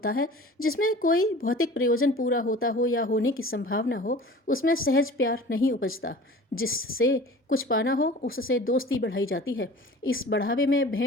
है, जिसमें कोई भौतिक प्रयोजन पूरा होता हो या होने की संभावना हो, उसमें सहज प्यार नहीं उपजता। जिससे कुछ पाना हो उससे दोस्ती बढ़ाई जाती है। इस बढ़ावे में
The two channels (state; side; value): normal; both; correlation 0.42